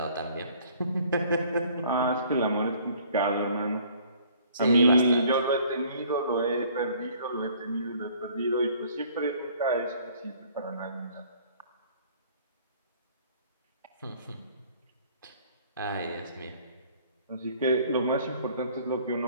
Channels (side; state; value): both; inverted; correlation -0.56